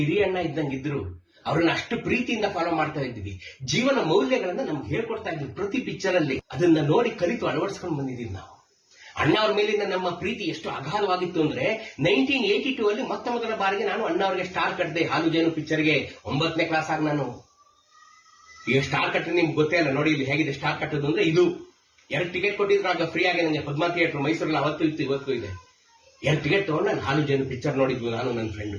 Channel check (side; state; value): both; identical; correlation 1.00